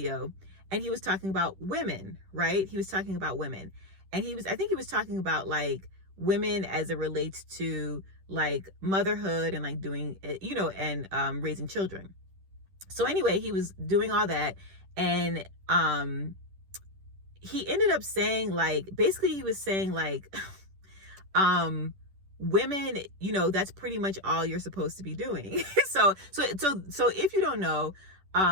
and he was talking about women, right? He was talking about women, and I think he was talking about like women as it relates to like motherhood and like doing, and raising children. So anyway, he was doing all that, and he ended up saying, like, basically he was saying like, women, that's pretty much all you're supposed to be doing. So if you don't know,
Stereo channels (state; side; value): late; left; 10 ms